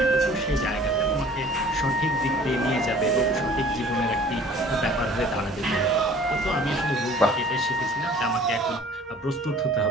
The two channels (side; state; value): both; normal; correlation 0.49